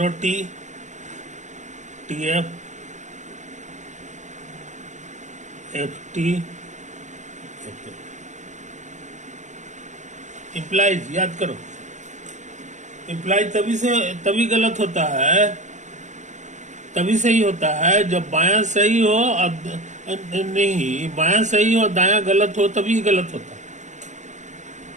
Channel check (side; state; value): left; late; 0.34 ms